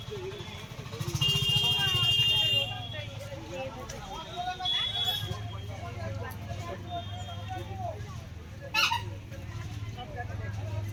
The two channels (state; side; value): identical; both; correlation 1.00